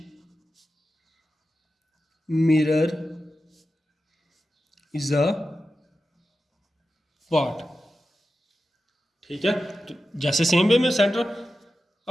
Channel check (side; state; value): both; normal; correlation 0.92